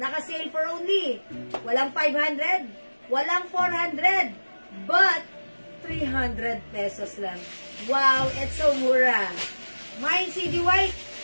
for only. Walang 500, walang 400, but 300 pesos lang. Wow, it's so mura. Mine CD white.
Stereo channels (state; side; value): inverted; both; correlation -1.00